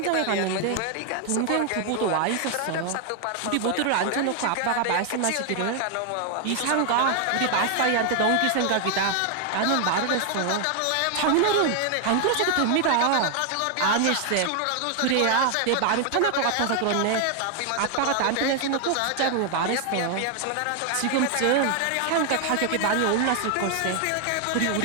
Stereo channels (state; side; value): different; both; correlation 0.00